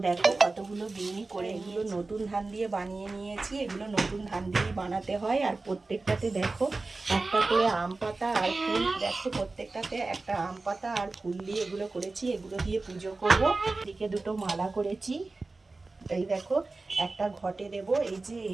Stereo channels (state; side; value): quieter; left; 3.5 dB